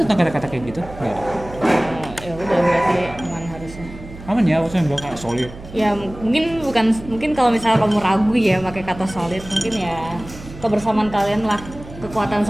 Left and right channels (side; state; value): right; noise; hum, 15 dB below the sound